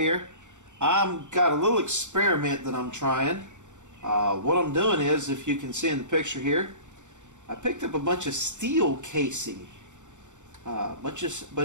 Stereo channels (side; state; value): left; late; 0.85 ms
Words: I've got a little experiment that I'm trying. What I'm doing is, if you can see in the picture here, I picked up a bunch of steel casing. Bunch